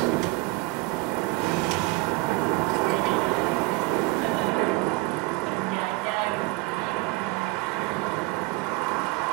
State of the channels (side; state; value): left; quieter; 22.2 dB